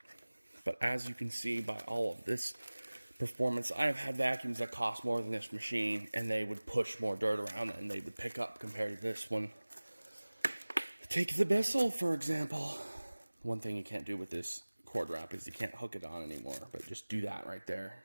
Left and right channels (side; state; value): both; inverted; correlation -1.00